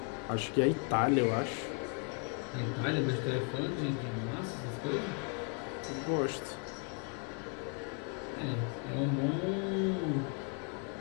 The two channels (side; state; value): right; quieter; 36.1 dB